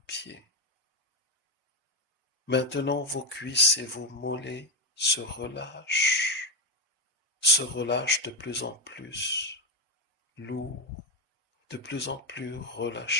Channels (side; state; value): both; normal; correlation 0.08